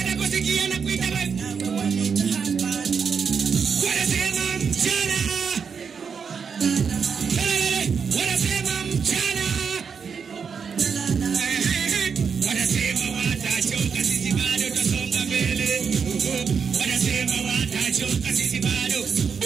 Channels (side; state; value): left; quieter; 6.2 dB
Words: na kuita wewe. Wanasema mchana. Wanasema mchana. Wanasema watachoka sisi bado tutasonga mbele. Wanasema watachoka sisi bado.